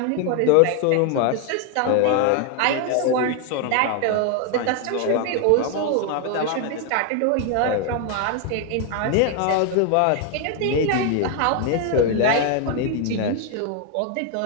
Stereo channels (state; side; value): different; both; correlation 0.00